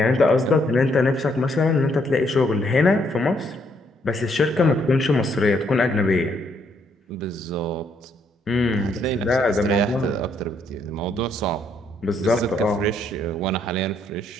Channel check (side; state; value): both; normal; correlation 0.71